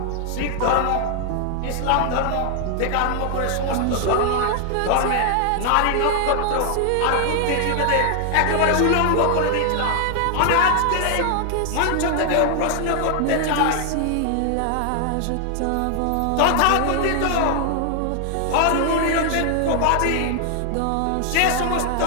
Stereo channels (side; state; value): both; different; correlation 0.00